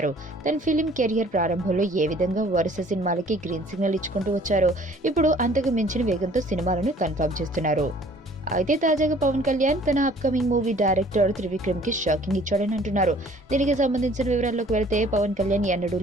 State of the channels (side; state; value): both; normal; correlation 0.54